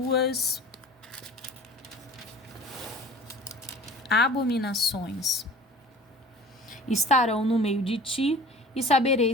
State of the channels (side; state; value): both; normal; correlation 0.44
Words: abominações estarão no meio de ti, e